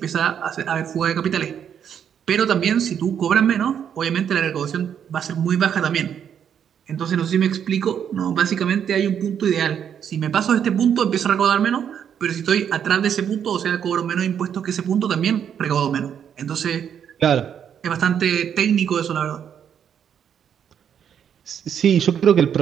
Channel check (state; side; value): quieter; left; 8.5 dB